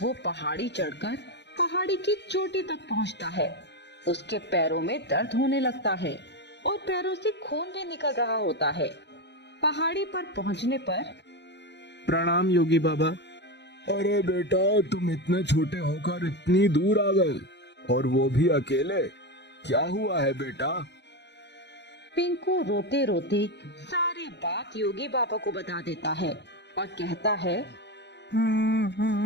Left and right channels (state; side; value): late; right; 0.50 ms